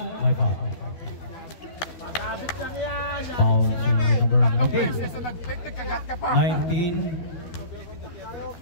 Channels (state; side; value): late; right; 13 ms